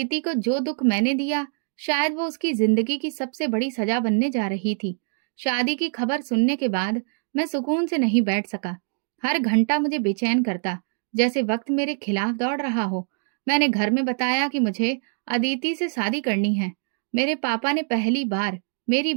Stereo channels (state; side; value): silent; left; 55 dB below the other